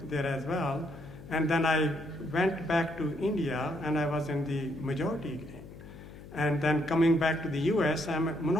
there as well. And then I went back to India and I was in the majority again. And then coming back to the US, I'm a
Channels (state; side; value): noise; left; hum, 16 dB below the sound